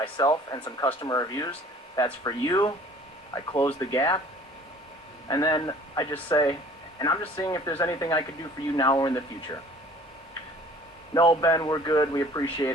and some customer reviews. That's for you. I close the gap, and then I just say, and I'm just seeing if there's anything I could do for you now or in the future. No, Ben, we're good. We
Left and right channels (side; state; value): both; normal; correlation 0.50